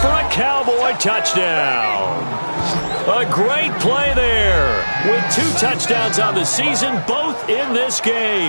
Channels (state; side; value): inverted; both; correlation -1.00